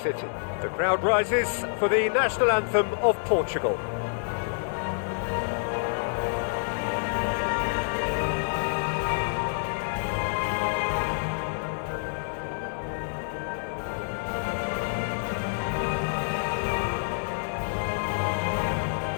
The crowd rises for the national anthem of Portugal.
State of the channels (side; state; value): right; silent; digital silence